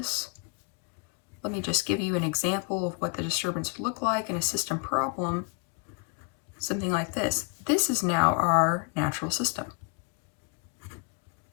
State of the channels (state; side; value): quieter; right; 32.9 dB